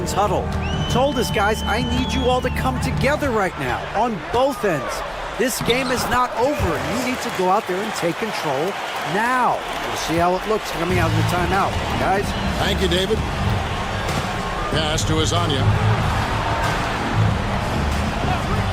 huddle. Told us, guys, I need you all to come together right now on both ends. This game is not over. You need to go out there and take control now. We'll see how it looks coming out of the timeout. Guys? Thank you, David. Pass to Azania.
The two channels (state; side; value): identical; both; correlation 1.00